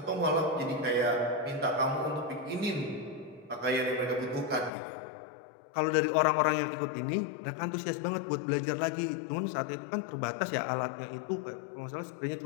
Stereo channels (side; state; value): right; drops out; at 4.7 s